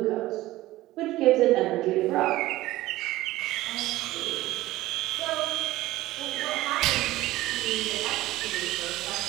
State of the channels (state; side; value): quieter; left; 16.9 dB